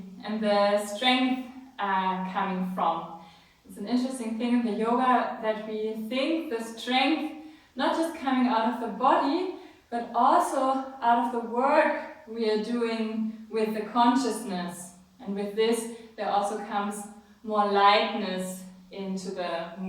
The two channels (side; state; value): both; identical; correlation 1.00